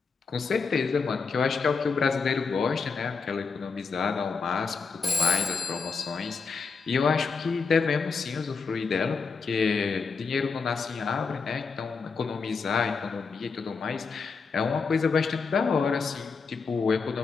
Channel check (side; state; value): right; quieter; 5.0 dB